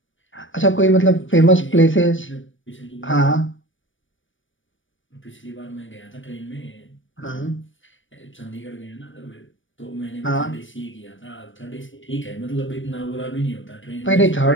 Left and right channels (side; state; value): right; late; 0.56 ms